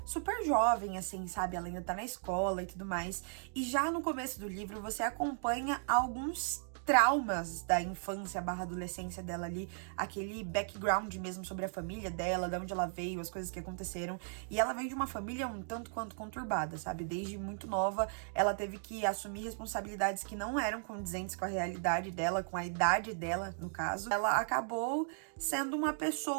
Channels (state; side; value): silent; left; digital silence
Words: super jovem, assim, sabe? Ela ainda tá na escola e tudo mais. E já no começo do livro você acompanha alguns traumas da infância / adolescência dela ali, aquele background mesmo sobre a família dela, de onde ela veio, as coisas que aconteceram. E ela vem de uma família um tanto quanto conturbada, sabe? Desde muito nova, ela teve que assumir responsabilidades que não eram condizentes com a realidade dela, com a idade dela, no caso. Ela acabou sendo uma